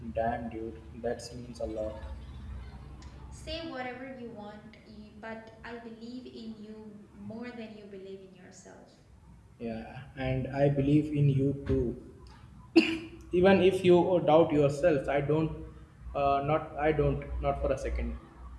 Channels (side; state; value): both; identical; correlation 1.00